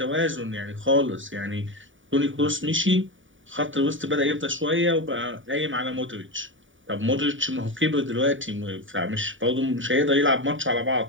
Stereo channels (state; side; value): late; left; 0.57 ms